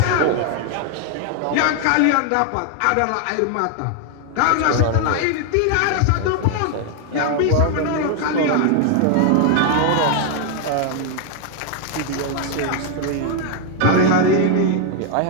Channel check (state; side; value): different; both; correlation 0.00